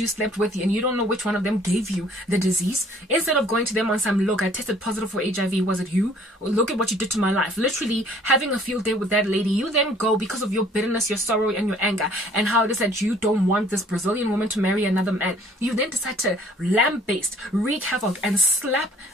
slept with and you don't know which one of them gave you the disease, instead of going to them on some, look, I tested positive for HIV, was it you? Look at what you did to my life. Literally having a field day with that lady, you then go because of your bitterness, your sorrow, and your anger, and how it is that you don't want this Brazilian woman to marry another man. You then decide to lamb-based, wreak havoc, and slap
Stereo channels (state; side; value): normal; both; correlation 0.56